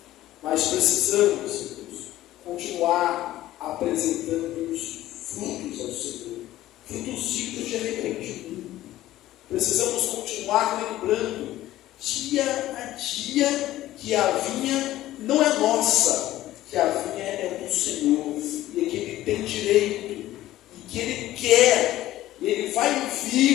Mas precisamos, irmãos, continuar apresentando os frutos ao Senhor, frutos dignos de arrependimento. Precisamos continuar lembrando, dia a dia, que a vinha não é nossa, que a vinha é do Senhor, e que Ele tem direito, e que Ele quer, e Ele vai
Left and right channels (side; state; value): right; quieter; 14.8 dB